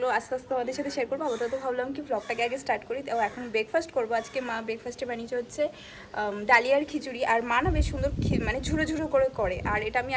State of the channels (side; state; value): both; identical; correlation 1.00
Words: আস্তে আস্তে তোমাদের সাথে শেয়ার করবো। তো ভাবলাম কি ব্লগটাকে আগে স্টার্ট করি। তো এখন ব্রেকফাস্ট করবো। আজকে মা ব্রেকফাস্টে বানিয়েছে হচ্ছে ডালিয়ার খিচুড়ি। আর মা না বেশ সুন্দর ঝুড়ো ঝুড়ো করে। আর এটা আমি